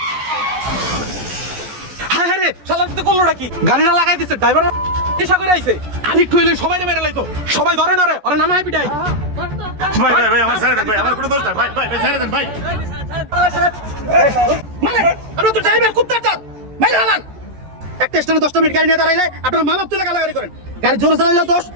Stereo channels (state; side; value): late; left; 14 ms